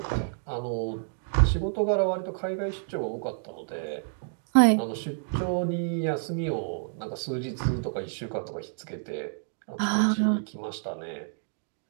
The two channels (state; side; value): silent; left; digital silence